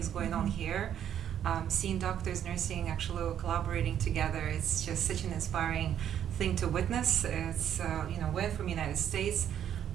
going on here. Seeing doctors, nursing, actually collaborating together, it's just such an inspiring thing to witness. It's, we're from the United States,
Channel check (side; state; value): left; quieter; 9.8 dB